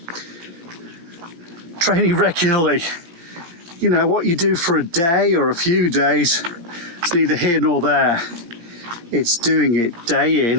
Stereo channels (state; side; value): late; left; 17 ms